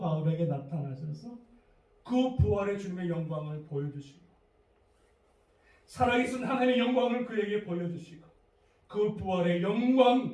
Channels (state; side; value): identical; both; correlation 1.00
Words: 나타나셔서 그 부활의 주님의 영광을 보여주시고 살아계신 하나님의 영광을 그에게 보여주시고 그 부활의